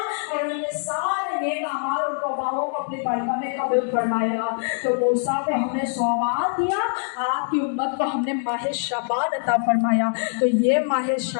और उनके सारे नेक अमाल और तौबाओं को अपनी बारगाह में कबूल फरमाएगा। तो मूसा को हमने सौबान दिया, आपकी उम्मत को हमने माह शाबान अता फरमाया। तो ये माह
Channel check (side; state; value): right; silent; digital silence